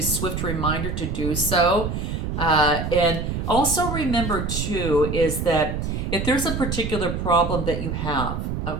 swift reminder to do so. And also remember too, is that if there's a particular problem that you have,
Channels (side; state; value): right; noise; rumble, 3 dB below the sound